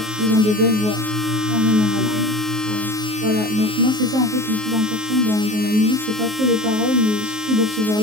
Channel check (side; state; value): left; late; 19 ms